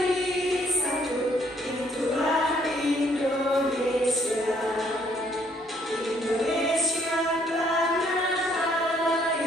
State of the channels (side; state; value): both; normal; correlation 0.66